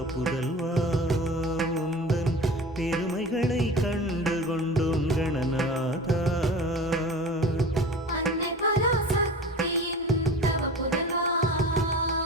புதல்வா உந்தன் பெருமைகளை கண்டு கொண்டோம் கணநாதா அன்னை பராசக்தியின் தவ புதல்வா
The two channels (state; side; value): normal; both; correlation 0.37